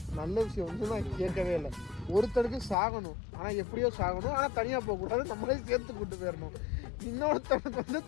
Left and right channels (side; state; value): right; drops out; at 2.8 s